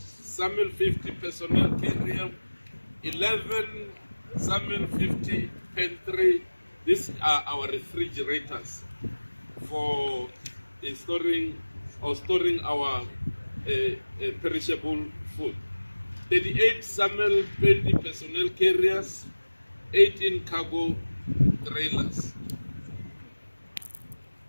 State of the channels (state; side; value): inverted; both; correlation -1.00